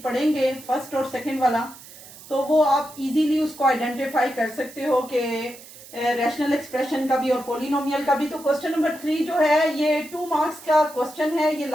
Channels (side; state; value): right; noise; hiss, 18 dB below the sound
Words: पढ़ेंगे, फर्स्ट और सेकंड वाला, तो वो आप इजीली उसको आइडेंटिफाई कर सकते हो कि रैशनल एक्सप्रेशन का भी और पोलिनोमियल का भी। तो क्वेश्चन नंबर 3 जो है ये 2 मार्क्स का क्वेश्चन है, ये